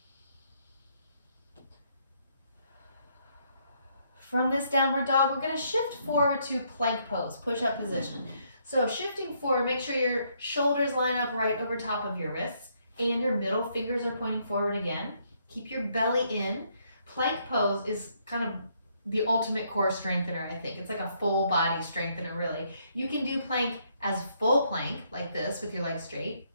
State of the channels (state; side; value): inverted; both; correlation -0.72